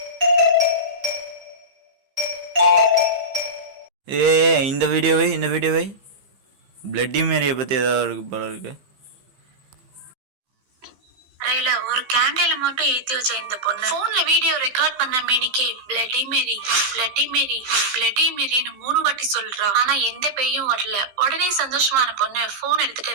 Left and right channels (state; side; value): late; left; 15 ms